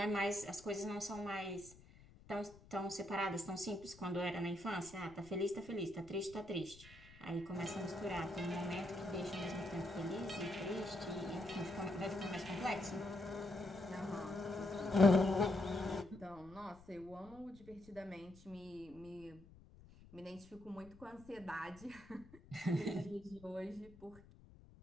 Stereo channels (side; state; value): left; noise; rumble, 21 dB below the sound